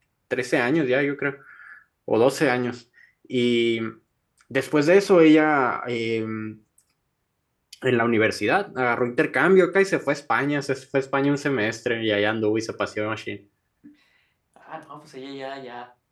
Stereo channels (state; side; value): identical; both; correlation 1.00